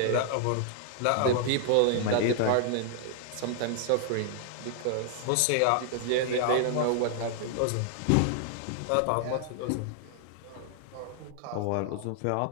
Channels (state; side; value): different; both; correlation 0.00